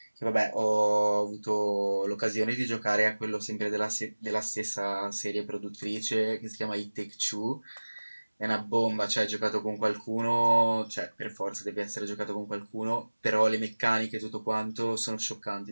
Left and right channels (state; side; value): inverted; both; correlation -1.00